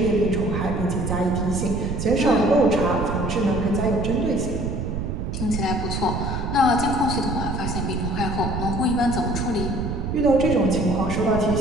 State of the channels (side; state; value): right; noise; rumble, 3 dB below the sound